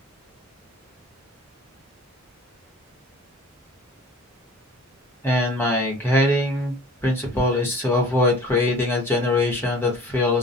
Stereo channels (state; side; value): normal; both; correlation 0.45